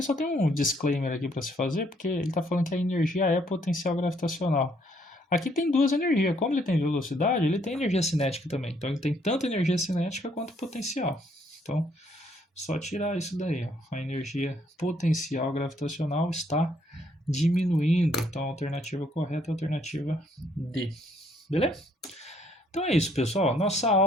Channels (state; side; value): normal; both; correlation 0.68